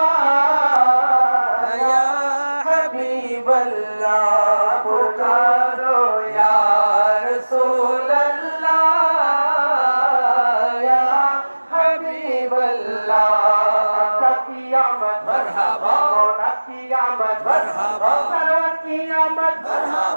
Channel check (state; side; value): inverted; both; correlation -1.00